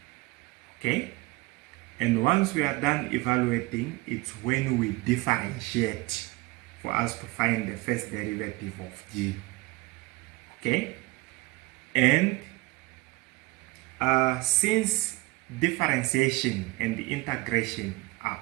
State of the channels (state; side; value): quieter; left; 22.3 dB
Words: Okay, and once we are done evaluating, it's when we differentiate for us to find the first derivative of g. Okay, and since differentiation and the integration are